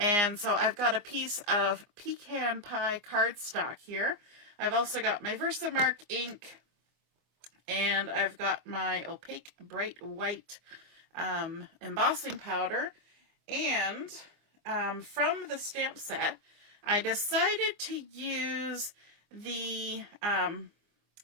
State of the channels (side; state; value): left; late; 24 ms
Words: so I've got a piece of Pecan Pie cardstock here. I've also got my Versamark ink, and I've got my opaque bright white embossing powder. And from the stamp set, I decided to use the